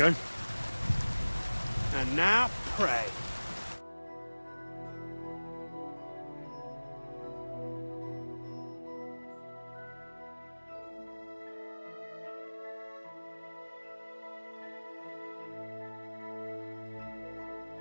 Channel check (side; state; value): both; inverted; correlation -1.00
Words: And now, pray.